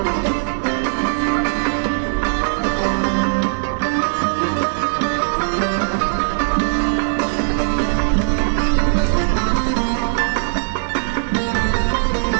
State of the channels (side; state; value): left; silent; digital silence